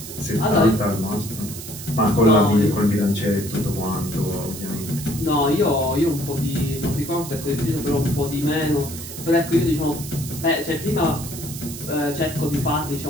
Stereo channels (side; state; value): right; noise; hiss, 11 dB below the sound